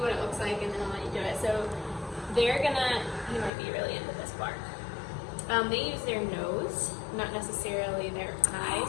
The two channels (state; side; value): drops out; right; at 3.5 s